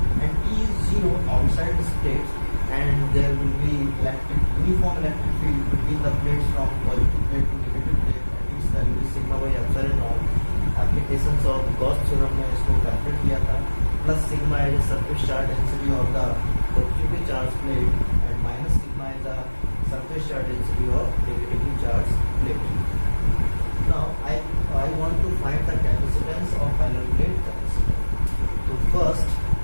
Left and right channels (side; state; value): both; inverted; correlation -1.00